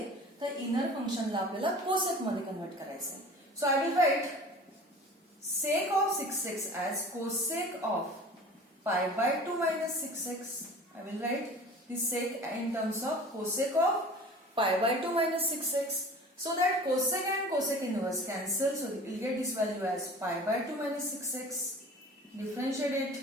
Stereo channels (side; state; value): both; normal; correlation 0.41